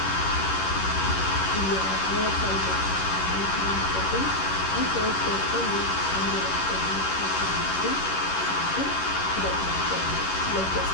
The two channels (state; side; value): late; right; 11 ms